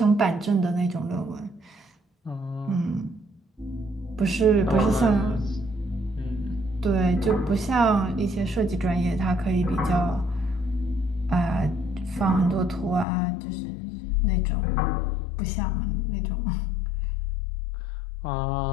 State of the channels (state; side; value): drops out; right; at 13.1 s